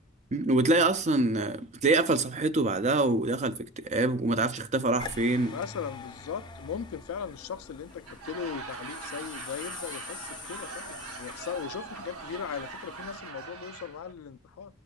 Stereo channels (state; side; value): normal; both; correlation 0.30